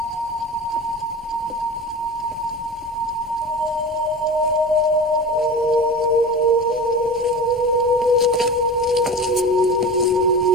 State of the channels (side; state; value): both; normal; correlation 0.32